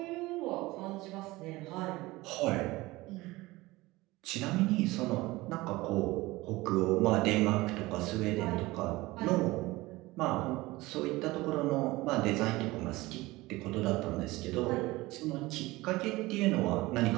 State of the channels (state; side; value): quieter; left; 20.1 dB